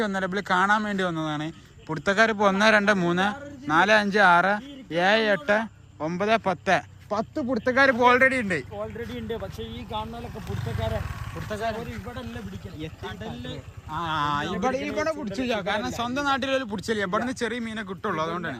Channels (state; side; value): identical; both; correlation 1.00